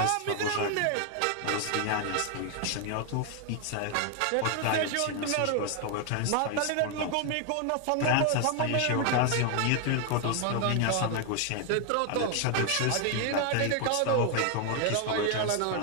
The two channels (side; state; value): both; different; correlation 0.00